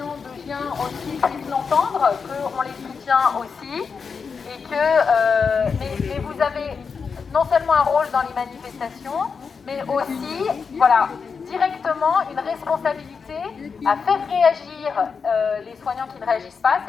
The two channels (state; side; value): quieter; right; 5.6 dB